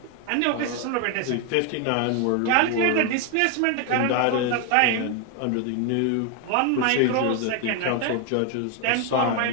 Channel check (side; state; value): both; different; correlation 0.01